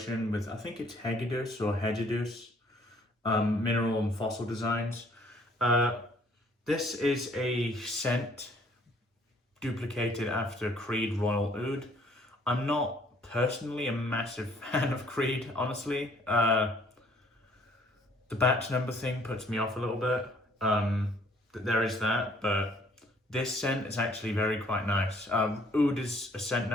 with, I think it's Hegedus or Hegedus Mineral and Fossil Designs. This is a scent duplicated after Creed Royal Oud. I'm not personally a massive fan of Creed, honestly. The batch number thing puts me off a little bit. There is that, but this scent is actually quite nice. Oud is a scent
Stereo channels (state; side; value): normal; both; correlation 0.61